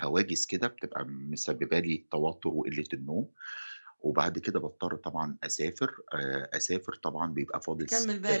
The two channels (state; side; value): inverted; both; correlation -1.00